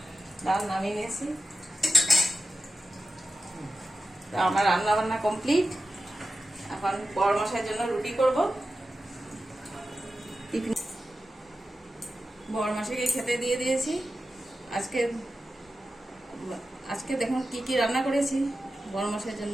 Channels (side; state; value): both; normal; correlation 0.91